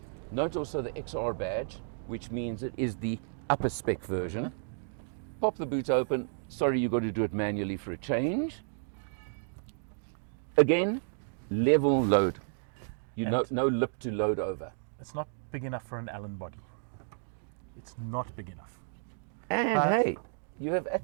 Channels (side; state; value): left; silent; digital silence